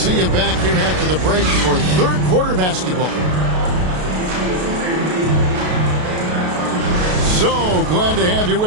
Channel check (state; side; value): late; left; 33 ms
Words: you back here after the break for third quarter basketball. So glad to have you